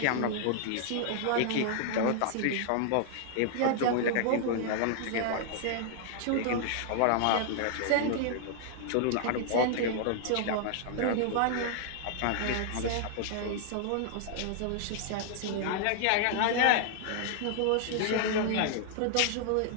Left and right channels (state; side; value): different; both; correlation -0.01